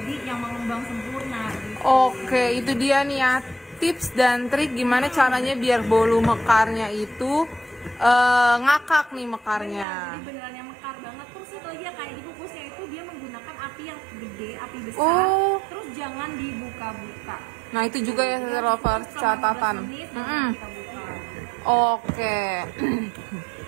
yang mengembang sempurna gitu. Oke, itu dia nih ya tips dan trik gimana caranya biar bolu mekarnya itu ngakak nih mekarnya. Jadi beneran yang mekar banget. Terus satu lagi ya, kayak di kukusnya itu dia menggunakan api yang gede, api besar. Terus jangan dibuka-buka. Nah itu juga ya lovers catatan. Oke.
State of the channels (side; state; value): left; drops out; at 9.9 s